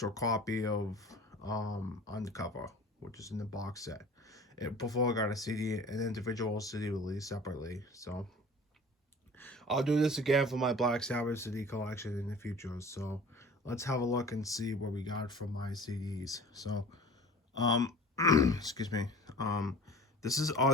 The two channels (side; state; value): both; normal; correlation 0.43